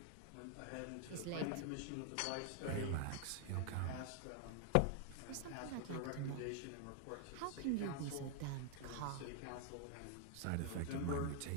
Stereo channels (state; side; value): different; both; correlation 0.00